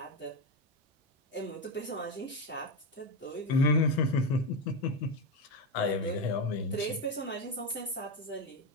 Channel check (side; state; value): both; normal; correlation 0.12